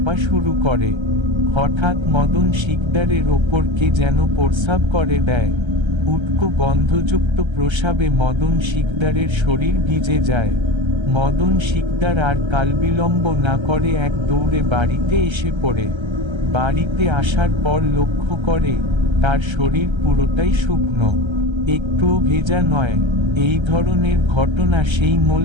শুরু করে। হঠাৎ মদন শিকদারের ওপর কে যেন প্রস্রাব করে দেয়। উটকো গন্ধযুক্ত প্রস্রাবে মদন শিকদারের শরীর ভিজে যায়। মদন শিকদার আর কালবিলম্ব না করে এক দৌড়ে বাড়িতে এসে পড়ে। বাড়িতে আসার পর লক্ষ্য করে তার শরীর পুরোটাই শুকনো, একটুও ভেজা নয়। এই ধরনের ঘটনা সেই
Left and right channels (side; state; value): left; late; 1.3 ms